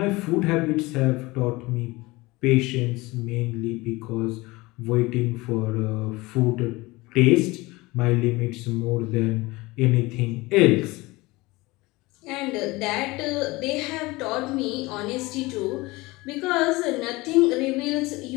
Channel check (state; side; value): quieter; right; 21.9 dB